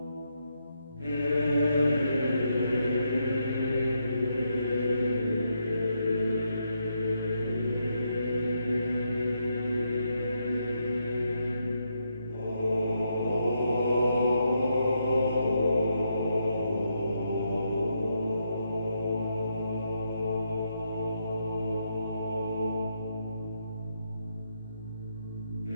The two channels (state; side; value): inverted; both; correlation -0.80